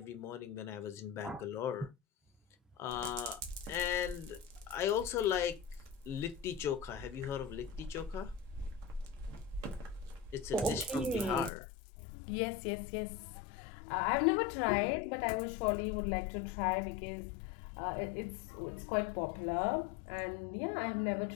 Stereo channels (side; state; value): right; drops out; at 11.5 s